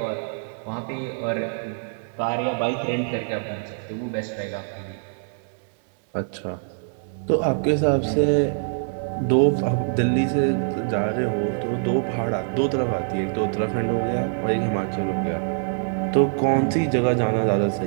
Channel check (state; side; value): silent; left; digital silence